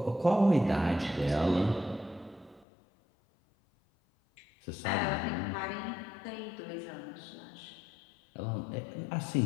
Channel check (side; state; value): right; drops out; at 2.7 s